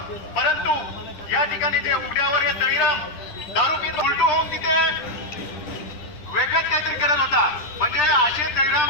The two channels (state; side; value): late; right; 10 ms